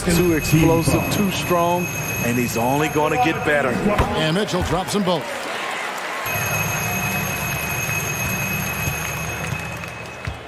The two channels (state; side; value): identical; both; correlation 1.00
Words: too explosive, too strong, and he's only going to get better. And Mitchell drops them both.